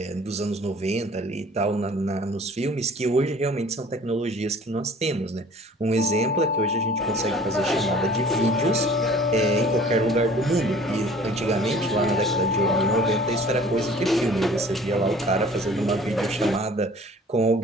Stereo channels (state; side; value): normal; both; correlation 0.49